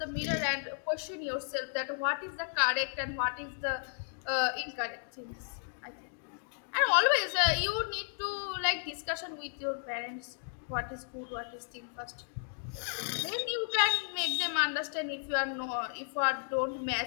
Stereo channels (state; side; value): silent; right; digital silence